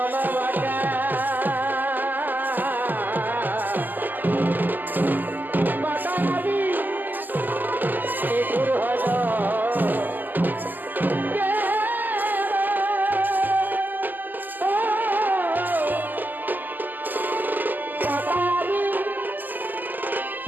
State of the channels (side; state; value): left; late; 0.086 ms